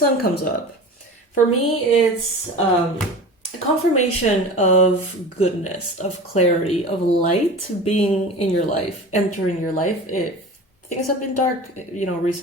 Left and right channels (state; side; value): normal; both; correlation 0.35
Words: comes up, for me, it's a confirmation of goodness, of clarity, of light being in your life, entering your life. If things have been dark,